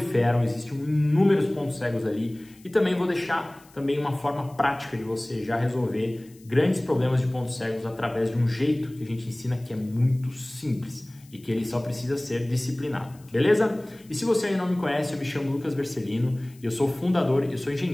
existem inúmeros pontos cegos ali. E também vou deixar também uma forma prática de você já resolver grandes problemas de pontos cegos através de um jeito que a gente ensina que é muito simples e que ele só precisa ser disciplinado, beleza? E se você ainda não me conhece, eu me chamo Lucas Bercelino, eu sou fundador, eu sou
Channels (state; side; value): noise; left; hiss, 27 dB below the sound